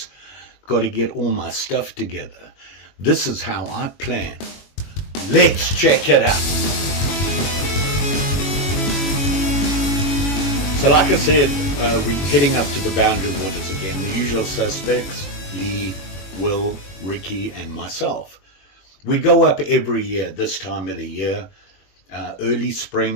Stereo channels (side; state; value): right; late; 21 ms